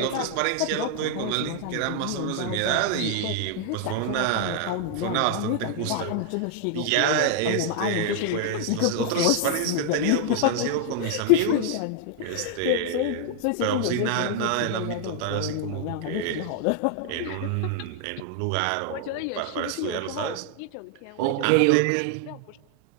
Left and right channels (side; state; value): both; different; correlation 0.00